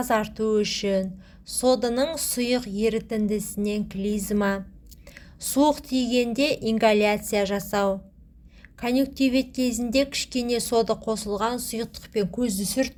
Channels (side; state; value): both; identical; correlation 1.00